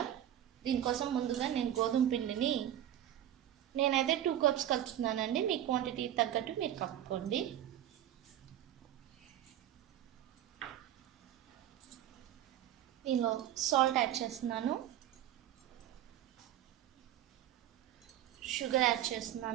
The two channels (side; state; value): left; quieter; 11.7 dB